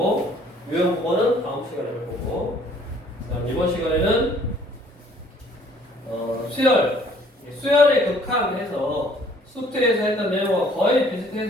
유형 부분은 다음 시간에 할 거고, 그 다음 이번 시간에는 수열의 극한해서 수트에서 했던 내용과 거의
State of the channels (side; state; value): both; normal; correlation 0.58